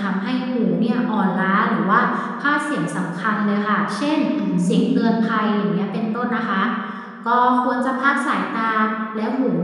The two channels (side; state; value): both; identical; correlation 1.00